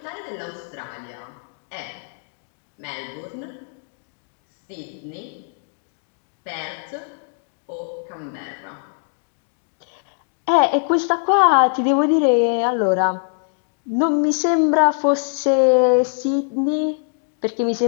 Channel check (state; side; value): silent; right; 57 dB below the other